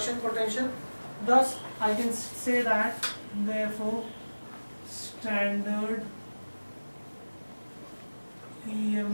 potential. Thus, I can say that, therefore, standard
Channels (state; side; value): inverted; both; correlation -1.00